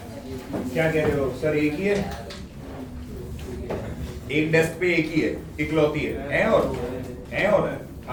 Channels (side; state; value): both; identical; correlation 1.00